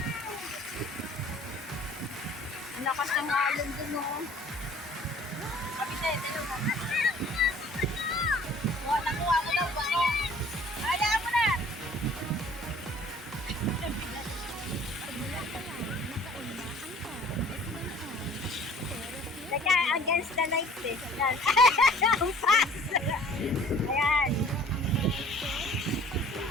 Lakas ng alon dun oh. Kapitay, tayo mo. Nakuha mo daw ba? Alaan mo na! Teka, against the lights eh. Ayan. Ang fast! Ayan.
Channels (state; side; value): normal; both; correlation 0.52